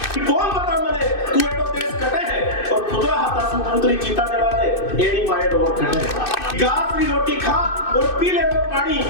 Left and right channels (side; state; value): right; late; 2.6 ms